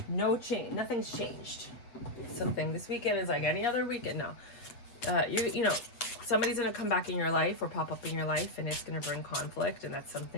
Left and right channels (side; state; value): right; late; 7.8 ms